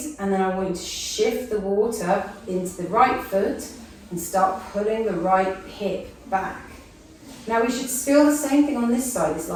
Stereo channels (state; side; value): identical; both; correlation 1.00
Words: and then I want you to shift the water into the right foot and start pulling the right hip back. Now we should feel the same thing on this side. It's